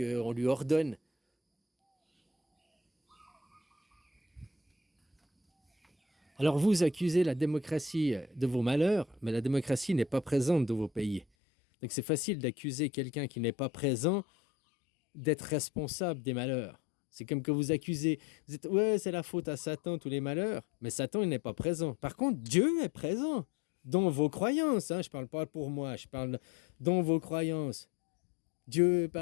lui ordonne. Alors vous accusez la démocratie de vos malheurs, mais la démocratie n'est pas présente dans vos pays. Donc c'est facile d'accuser quelqu'un qui n'est pas présent d'être responsable des malheurs. C'est comme que vous accusez, vous dites, ouais, c'est la faute à Satan, tous les malheurs, mais Satan, il n'est pas présent. Par contre, Dieu est présent dans vos croyances, hein. Je ne parle pas pour moi, je parle dans vos croyances. Dieu est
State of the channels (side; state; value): right; drops out; at 11.2 s